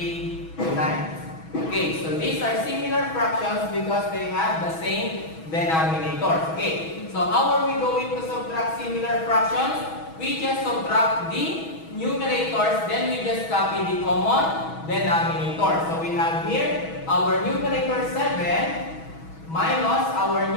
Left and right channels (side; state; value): right; late; 6.2 ms